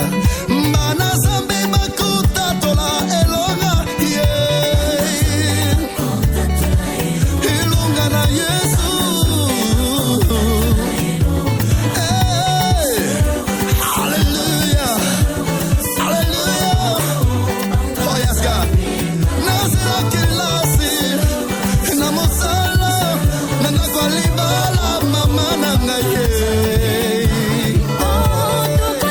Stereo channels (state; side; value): identical; both; correlation 1.00